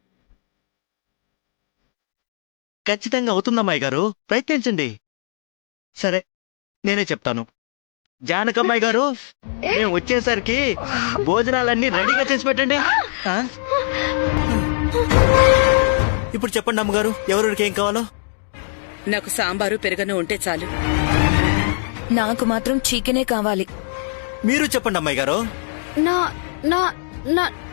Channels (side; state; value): right; silent; digital silence